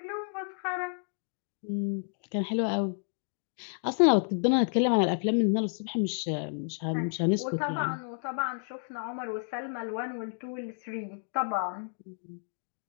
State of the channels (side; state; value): right; silent; digital silence